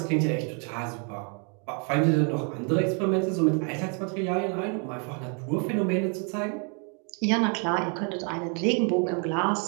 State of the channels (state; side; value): quieter; left; 38.5 dB